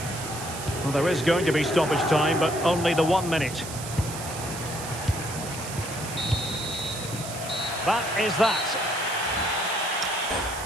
Well, there is going to be stoppage time, but only the 1 minute. That is that.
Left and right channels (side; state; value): right; noise; hiss, 10 dB below the sound